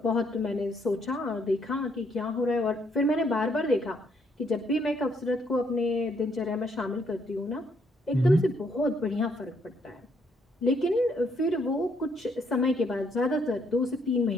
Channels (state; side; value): normal; both; correlation 0.71